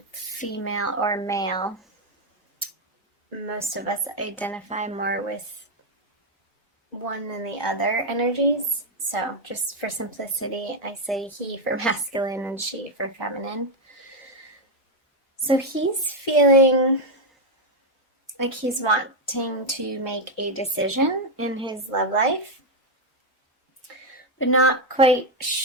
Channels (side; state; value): both; normal; correlation 0.03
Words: female or male. Most of us identify more with one than the other energies. So just for simplicity, I say he for masculine and she for feminine. So he's feeling like he's wanting to make a decision in his love life, but not quite